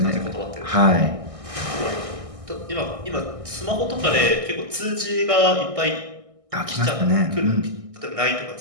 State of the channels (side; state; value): left; late; 1.6 ms